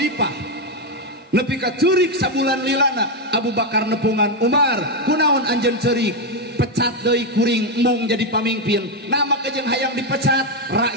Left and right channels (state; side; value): normal; both; correlation 0.05